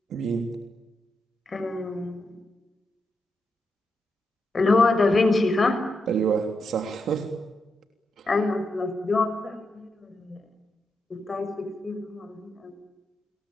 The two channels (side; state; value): both; normal; correlation 0.84